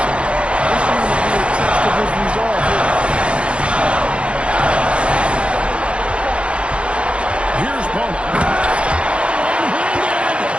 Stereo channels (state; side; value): late; left; 0.058 ms